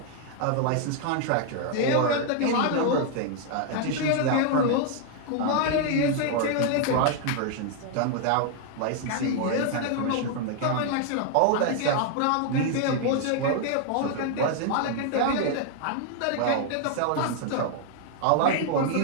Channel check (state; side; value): different; both; correlation 0.00